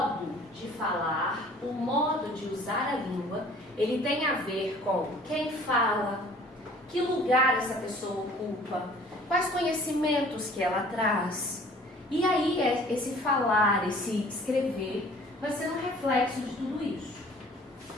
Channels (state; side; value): normal; both; correlation 0.51